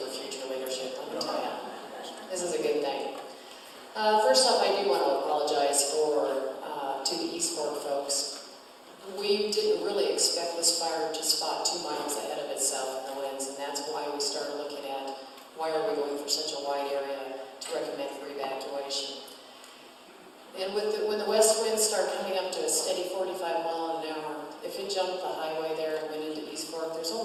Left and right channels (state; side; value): identical; both; correlation 1.00